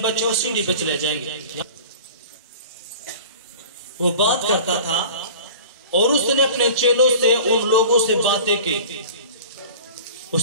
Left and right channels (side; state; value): both; inverted; correlation -0.40